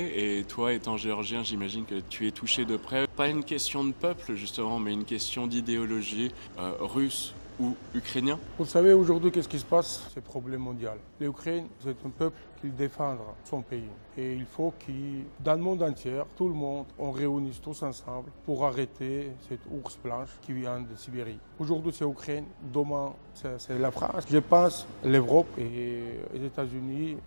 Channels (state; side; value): inverted; both; correlation -1.00